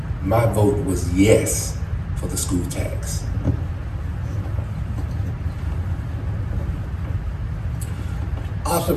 was yes for the school tax. I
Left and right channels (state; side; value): identical; both; correlation 1.00